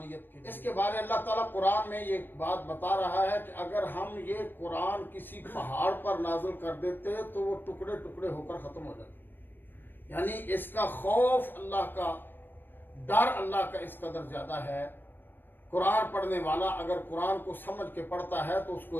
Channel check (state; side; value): late; right; 0.096 ms